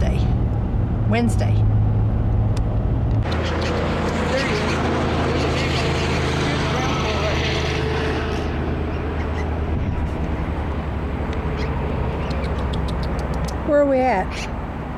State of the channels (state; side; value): identical; both; correlation 1.00